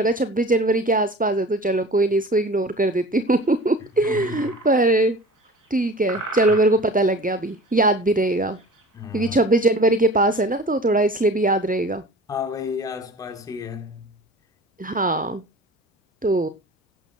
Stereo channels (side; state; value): both; normal; correlation 0.40